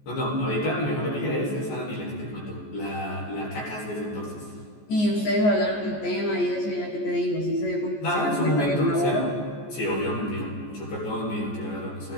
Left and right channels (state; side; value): late; right; 14 ms